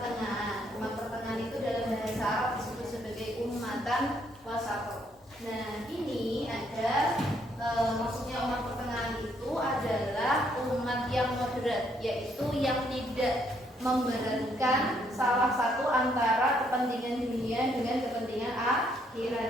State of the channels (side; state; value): both; normal; correlation 0.71